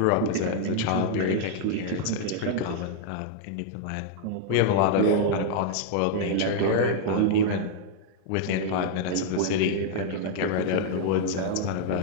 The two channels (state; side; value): different; both; correlation -0.01